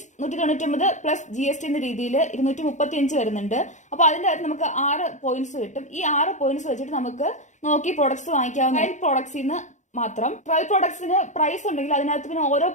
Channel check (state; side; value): late; right; 0.35 ms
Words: 199 പ്ലസ് GST എന്ന രീതിയിൽ 235 വരുന്നുണ്ട്. അപ്പൊ അതിന്റെ അകത്ത് നമുക്ക് 6 പോയിന്റ്സ് കിട്ടും. ഈ 6 പോയിന്റ്സ് വെച്ചിട്ട് നമുക്ക് നോക്കി പ്രോഡക്ട്സ് വാങ്ങിക്കാവുന്ന പ്രോഡക്ട്സിൽ നിന്ന് മാത്രം. ട്രയൽ പ്രോഡക്ട്സിന് പ്രൈസ് ഉണ്ടെങ്കിൽ അതിനകത്ത് പിന്നെ ഓരോ